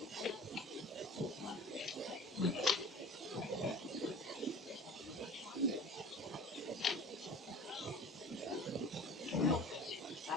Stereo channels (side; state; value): both; normal; correlation 0.41